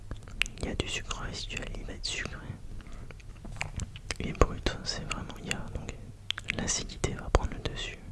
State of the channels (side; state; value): both; identical; correlation 1.00